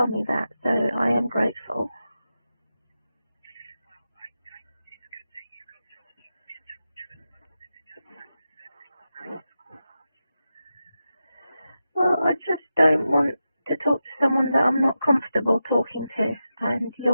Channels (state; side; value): inverted; both; correlation -0.91